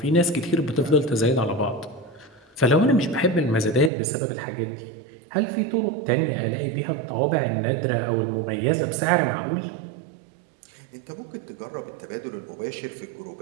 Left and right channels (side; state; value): left; drops out; at 3.9 s